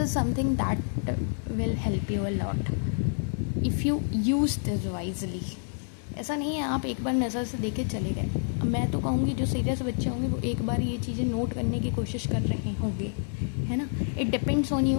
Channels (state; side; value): silent; right; digital silence